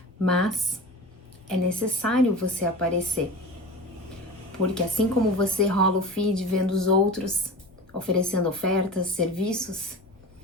Mas é necessário você aparecer. Porque assim como você rola o feed vendo os outros oferecendo ofertas, serviços,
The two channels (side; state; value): both; normal; correlation 0.32